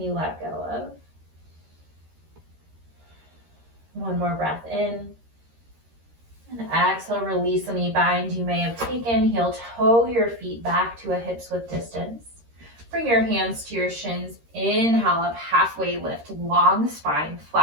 you let go of? One more breath in. And exhale, release any bind you may have taken. Heel toe your feet back to a hips width distance. Bring your hands to your shins. Inhale up, halfway lift, long spine,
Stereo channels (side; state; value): left; late; 13 ms